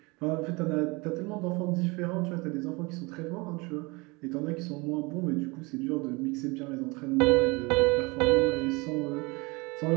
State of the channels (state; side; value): quieter; left; 26.2 dB